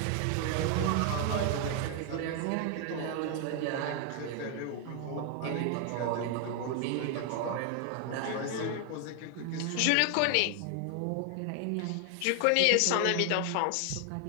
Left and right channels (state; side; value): different; both; correlation 0.00